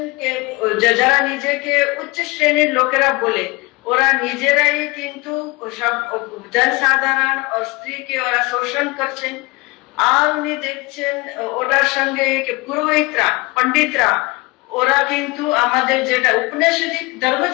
যারা নিজেকে উচ্চ শ্রেণীর লোকেরা বলে, ওরা নিজেরাই কিন্তু সব জনসাধারণ ও স্ত্রীকে ওরা শোষণ করছেন। আর উনি দেখছেন ওটার সঙ্গে পুরোহিতরা, পণ্ডিতরা, ওরা কিন্তু আমাদের যেটা উপনিষদিক ধর্ম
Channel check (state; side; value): quieter; right; 24.9 dB